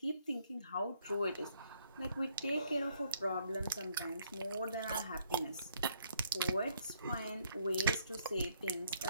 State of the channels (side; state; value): both; inverted; correlation -0.69